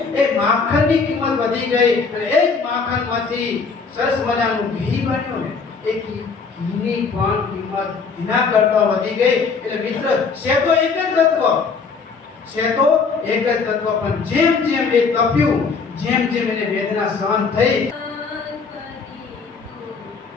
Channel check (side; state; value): right; quieter; 4.9 dB